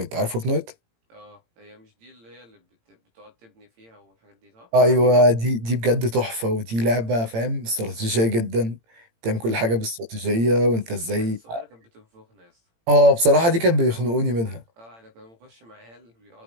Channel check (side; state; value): left; late; 18 ms